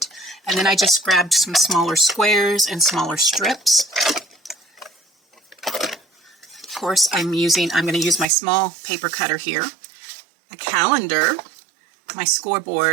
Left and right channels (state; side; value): drops out; left; at 8.2 s